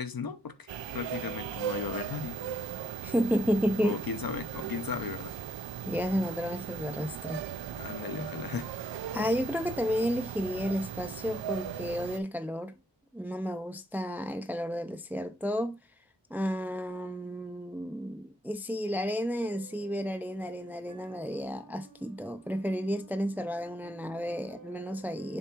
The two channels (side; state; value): both; normal; correlation 0.73